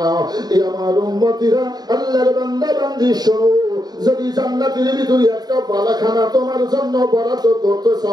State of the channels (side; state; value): left; late; 0.19 ms